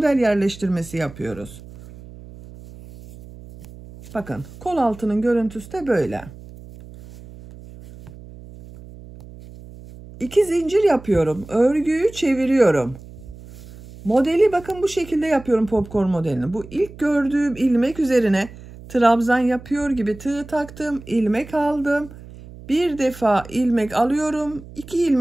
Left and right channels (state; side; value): noise; right; hum, 17 dB below the sound